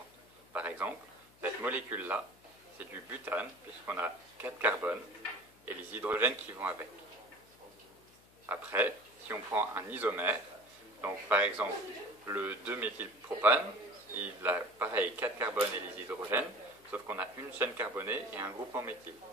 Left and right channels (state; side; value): noise; left; hum, 27 dB below the sound